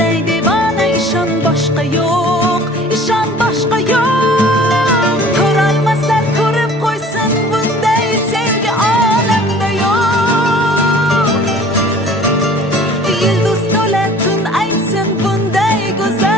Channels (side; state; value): both; normal; correlation 0.48